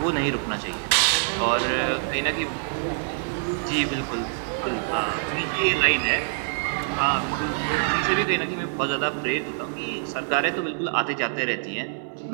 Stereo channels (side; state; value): left; silent; digital silence